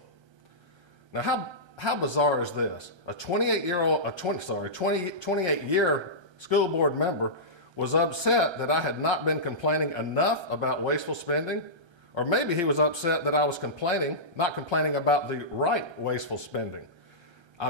Now, how bizarre is this? A 28-year school board member was upset that I had not been complaining enough about wasteful spending, or maybe he was upset that I was not complaining about the right wasteful spending.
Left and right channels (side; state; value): left; late; 1.3 ms